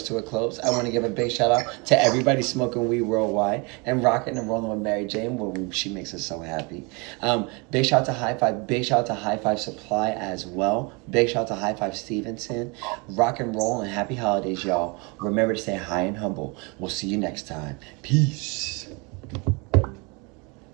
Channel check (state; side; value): quieter; left; 29.9 dB